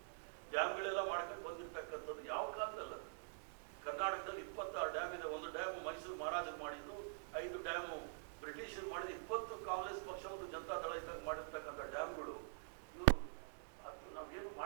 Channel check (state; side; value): silent; left; digital silence